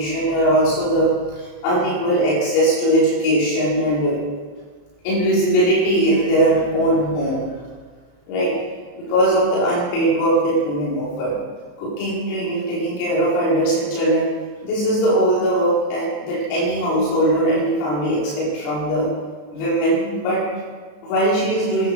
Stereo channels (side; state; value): right; late; 34 ms